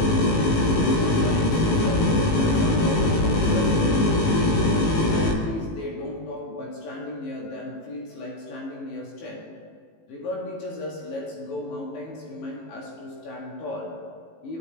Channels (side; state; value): right; late; 18 ms